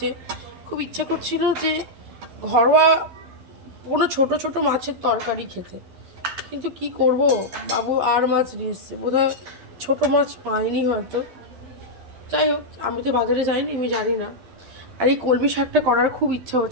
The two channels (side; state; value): left; late; 12 ms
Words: খুব ইচ্ছা করছিল যে ঘরোয়া কোনো ছোট ছোট মাছের তরকারি খেতে, কিন্তু কি করব, বাবু আর মাছ নিয়ে এসছে, বোধহয় ছোটো মাছ পাইনি হয়তো। যাই হোক, আমি তো বাজারে যাইনি, আমি জানি না। আর এই কলমি শাকটা করার খুব ইচ্ছা